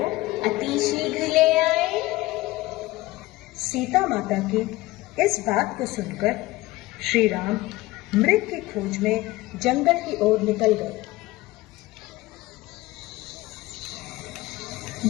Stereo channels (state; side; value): quieter; right; 18.9 dB